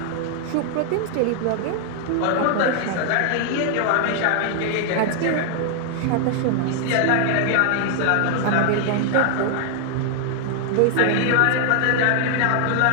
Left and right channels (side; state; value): both; different; correlation 0.00